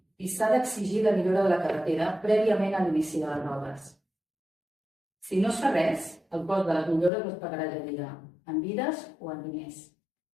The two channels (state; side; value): drops out; right; at 7.1 s